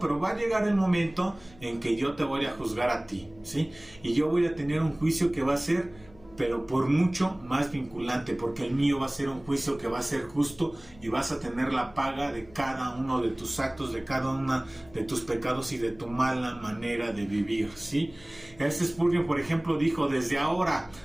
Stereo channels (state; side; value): noise; left; hum, 24 dB below the sound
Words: va a llegar el momento en que yo te voy a juzgar a ti, ¿sí? Y yo voy a tener un juicio que va a ser, pero por mucho más vinculante, porque el mío va a ser un juicio que va a ser justo y vas a tener la paga de cada uno de tus actos, de cada uno de tus pecados y de tu mala manera de vivir, ¿sí? Spurgeon, por ejemplo, dijo: desde ahora,